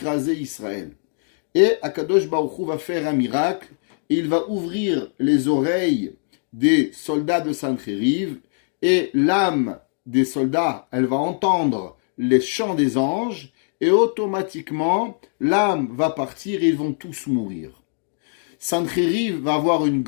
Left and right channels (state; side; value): silent; right; digital silence